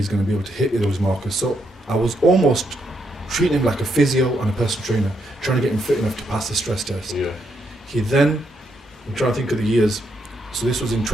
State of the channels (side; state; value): both; normal; correlation 0.78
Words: going to be able to hit those markers. So I was almost treating him like a physio and a personal trainer, trying to get him fit enough to pass the stress test. Yeah. He then, I'm trying to think of the years, so this was in